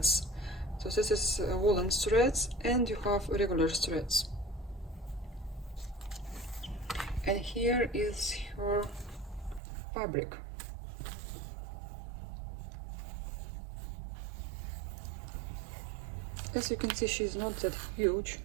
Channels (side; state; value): left; drops out; at 9.6 s